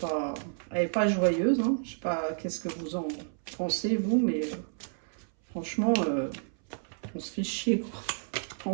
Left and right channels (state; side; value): silent; left; 57 dB below the other